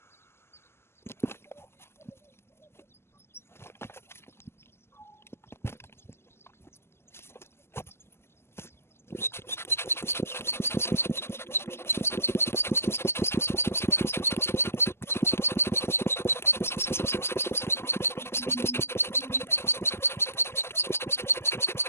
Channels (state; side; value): late; right; 0.12 ms